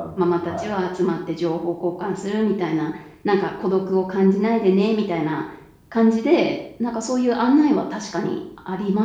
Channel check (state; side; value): identical; both; correlation 1.00